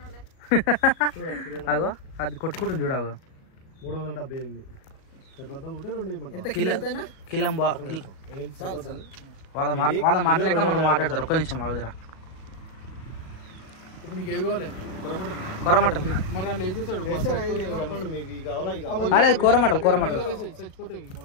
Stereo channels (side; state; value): right; late; 37 ms